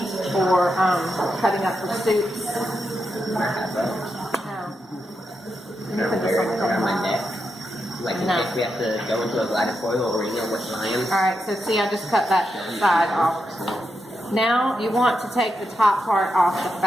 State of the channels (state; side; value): normal; both; correlation 0.85